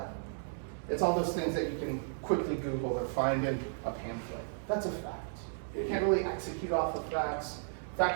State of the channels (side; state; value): left; silent; 55 dB below the other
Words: It's all those things that you can quickly Google or find in a pamphlet. That's a fact. You can't really execute off of facts.